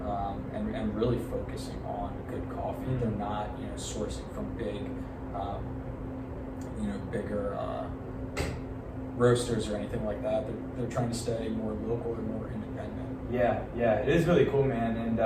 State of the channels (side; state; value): both; identical; correlation 1.00